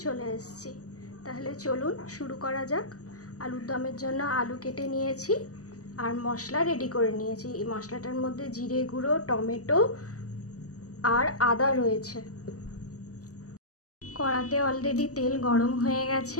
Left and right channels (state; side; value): late; right; 0.66 ms